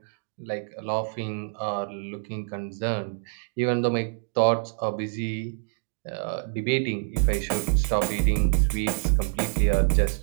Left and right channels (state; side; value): silent; left; digital silence